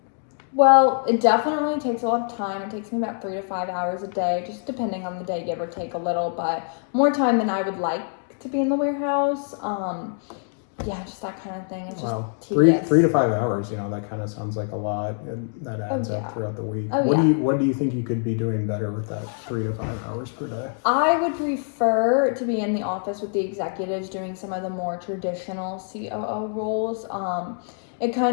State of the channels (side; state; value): right; silent; 57 dB below the other